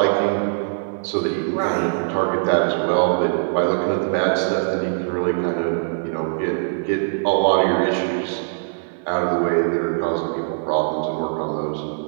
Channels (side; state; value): left; silent; digital silence